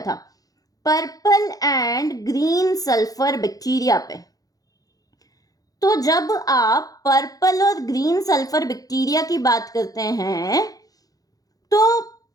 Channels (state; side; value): late; right; 0.18 ms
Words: था? Purple and green sulphur bacteria पे। तो जब आप पर्पल और ग्रीन सल्फर बैक्टीरिया की बात करते हैं तो